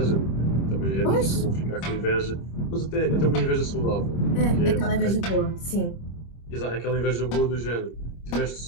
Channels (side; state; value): right; late; 26 ms